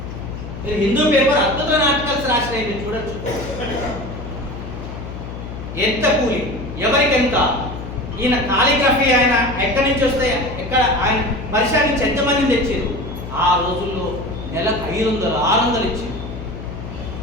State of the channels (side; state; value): left; noise; hum, 9 dB below the sound